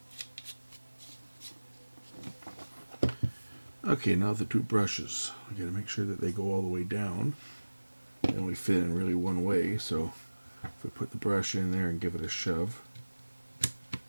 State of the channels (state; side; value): inverted; both; correlation -1.00